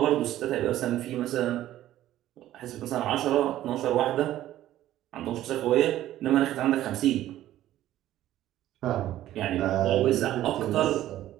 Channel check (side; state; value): left; quieter; 13.5 dB